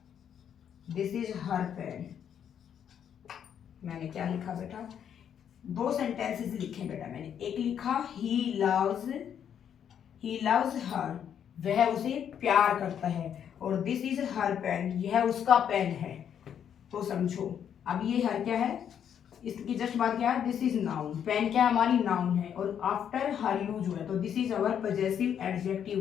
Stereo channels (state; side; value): quieter; right; 8.8 dB